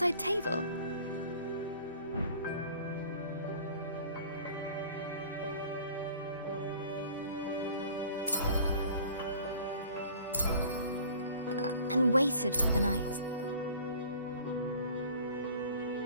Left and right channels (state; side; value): inverted; both; correlation -0.47